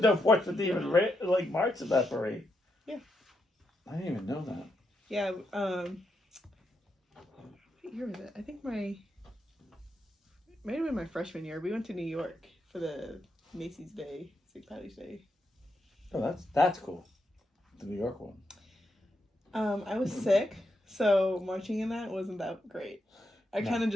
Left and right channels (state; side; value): normal; both; correlation 0.82